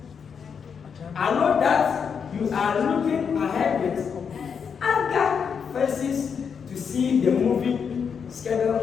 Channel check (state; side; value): quieter; right; 6.6 dB